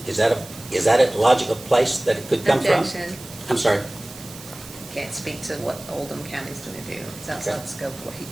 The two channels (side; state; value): right; noise; hiss, 16 dB below the sound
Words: Is that a logical place that it could come from? Objection. I'm sorry. Can't speak to what Oldham County's gonna do. It's outside the scope of what he